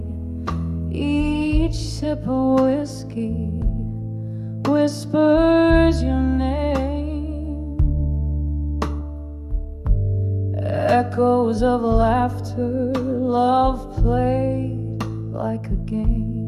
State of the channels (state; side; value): identical; both; correlation 1.00